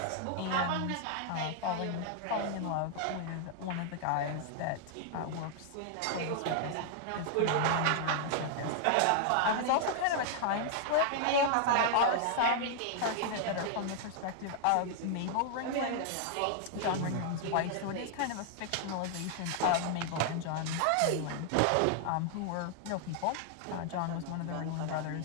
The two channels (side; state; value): both; different; correlation -0.01